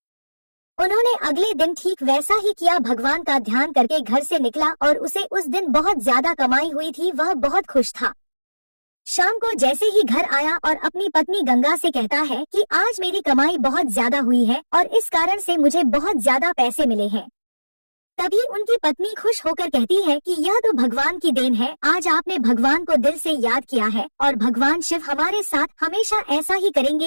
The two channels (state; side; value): inverted; both; correlation -1.00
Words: उन्होंने अगले दिन ठीक वैसा ही किया। भगवान का ध्यान करके घर से निकला और उसे उस दिन बहुत ज्यादा कमाई हुई थी। वह बहुत खुश था। शाम को जैसे ही घर आया और अपनी पत्नी गंगा से कहता है कि आज मेरी कमाई बहुत ज्यादा हुई है और इस कारण से मुझे बहुत ज्यादा पैसे मिले हैं। तभी उनकी पत्नी खुश होकर कहती है कि यह तो भगवान की देन है, आज आपने भगवान को दिल से याद किया है और भगवान शिव हमारे साथ हमेशा ऐसा ही